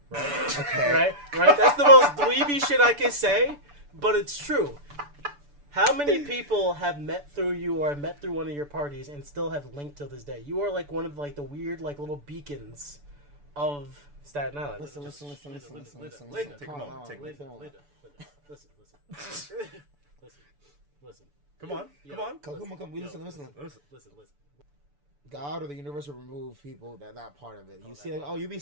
Right? Okay. Right? That's the most dweeby shit I can say, but it's true. How many people have met through you or met through one of your parties and still have linked till this day? You are like one of like the weird like little beacons of Staten Island. Listen. Take a moment. Listen. Come on. We listen. God or the universe will remove people that part of it. You see, like, you be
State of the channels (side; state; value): left; late; 6.9 ms